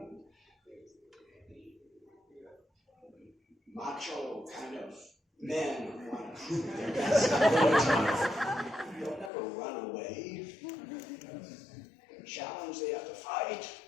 macho kind of men who want to prove their best ability. They'll never run away. They're challenged, they have to fight.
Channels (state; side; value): drops out; right; at 9.3 s